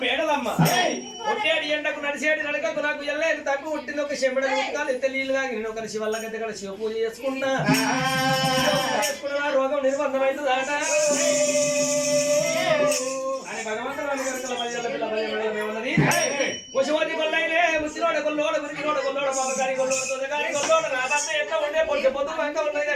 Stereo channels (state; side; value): identical; both; correlation 1.00